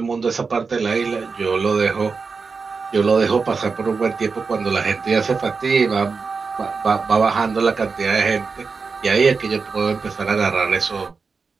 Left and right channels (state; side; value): quieter; left; 4.8 dB